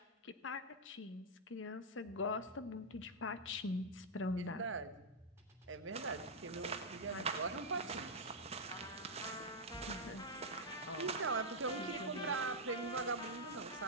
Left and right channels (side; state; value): both; normal; correlation -0.05